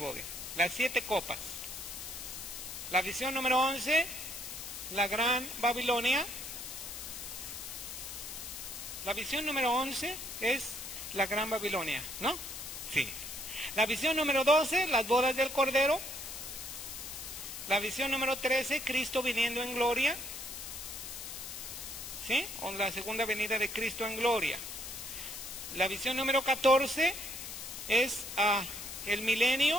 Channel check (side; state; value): left; noise; hiss, 8 dB below the sound